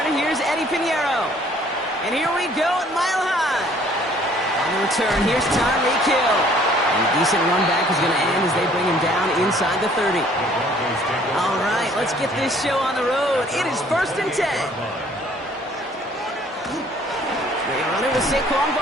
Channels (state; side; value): normal; both; correlation 0.58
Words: Here's Eddie Pinheiro. And here we go at Mile High. On the return, here's Tyreek Hill. And a decent run back is going to end as they bring him down inside the 30. All right, let's get this show on the road. It is 1st and 10. They run it with Saquon